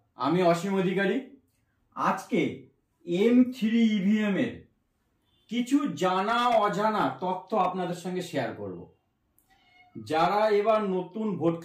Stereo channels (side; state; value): both; identical; correlation 1.00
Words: আমি অসীম অধিকারী। আজকে M3 ইভিএম এর কিছু জানা অজানা তথ্য আপনাদের সঙ্গে শেয়ার করব। যারা এবার নতুন